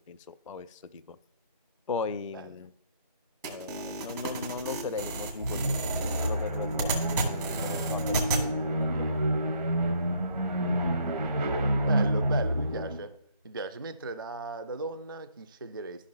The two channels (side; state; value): both; inverted; correlation -0.65